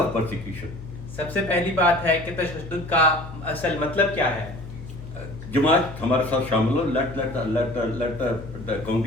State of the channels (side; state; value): left; noise; hum, 13 dB below the sound